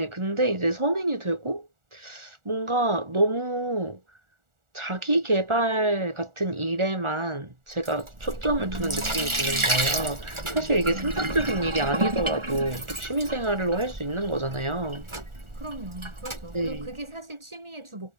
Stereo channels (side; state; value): left; late; 1.4 ms